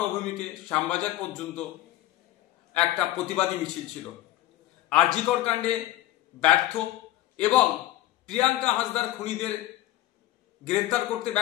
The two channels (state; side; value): quieter; right; 15.3 dB